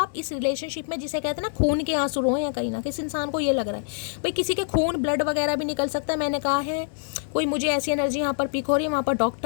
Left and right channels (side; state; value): right; silent; 61 dB below the other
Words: इस रिलेशनशिप में जिसे कहते हैं ना खून के आंसू रोए हैं कहीं ना कहीं। इस इंसान को ये लग रहा है भाई किसी के खून ब्लड वगैरह भी निकल सकता है। मैंने कहा है कोई मुझे ऐसी एनर्जी यहाँ पर पिक हो रही है, वहाँ पर